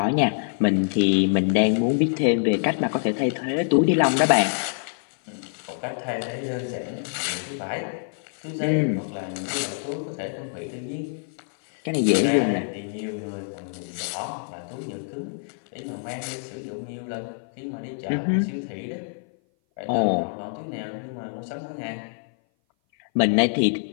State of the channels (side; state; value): right; silent; 57 dB below the other